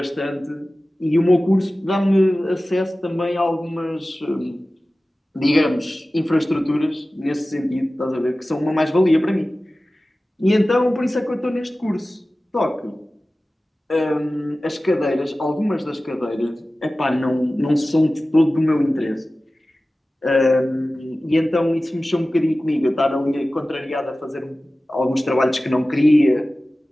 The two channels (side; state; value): both; normal; correlation 0.96